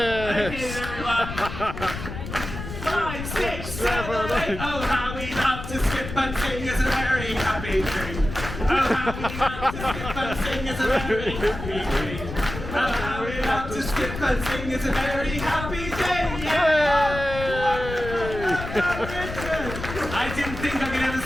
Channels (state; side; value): noise; left; rumble, 8 dB below the sound